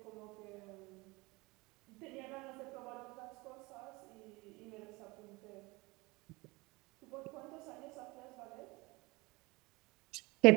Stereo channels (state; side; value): quieter; left; 23.8 dB